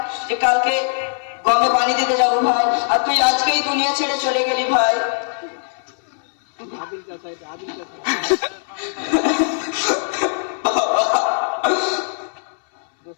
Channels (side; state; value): right; silent; 64 dB below the other